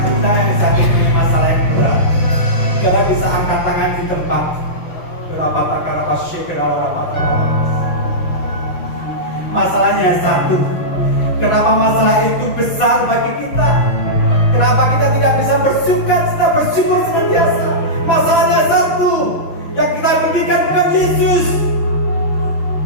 kita yang sakit dengan masalah yang berat. Jangan bisa angkat tangan di tempat. Berapa perkara masalahnya satu. Kenapa masalah itu besar bagi kita? Kenapa kita tidak bisa bersyukur senantiasa? Masalahnya satu. Yang kita pikirkan bukan Yesus.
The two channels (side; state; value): right; late; 6.2 ms